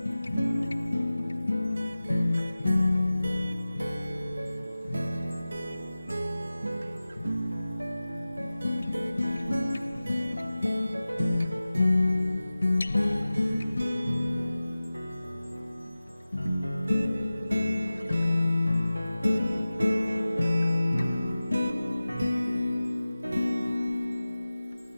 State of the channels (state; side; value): inverted; both; correlation -0.97